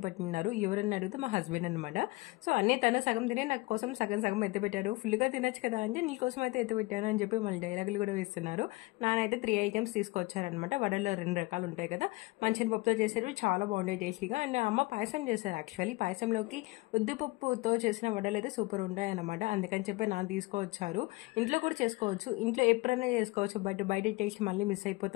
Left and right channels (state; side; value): quieter; right; 22.6 dB